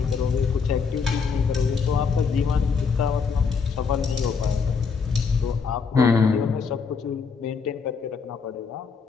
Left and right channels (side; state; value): right; quieter; 5.5 dB